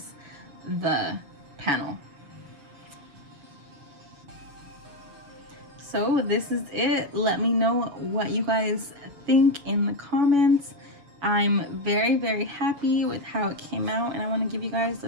the panel. So this is it. Let me know what you guys think in the comments. I'm very, very happy with how it came out, and I want to give you guys a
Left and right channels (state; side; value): late; left; 7.1 ms